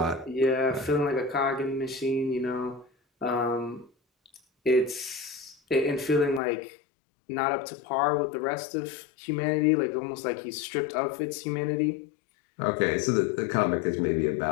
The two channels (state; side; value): drops out; right; at 6.4 s